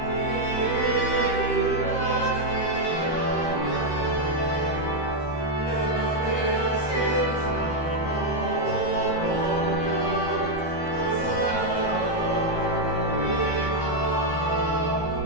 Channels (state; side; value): late; right; 13 ms